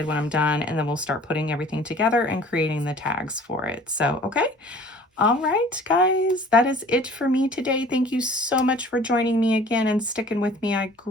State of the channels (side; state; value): both; normal; correlation 0.49